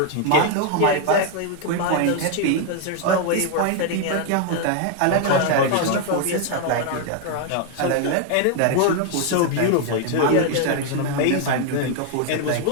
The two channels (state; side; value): different; both; correlation 0.01